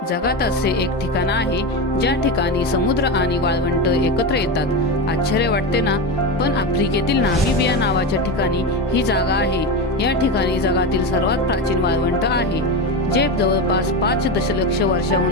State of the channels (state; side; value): normal; both; correlation 0.18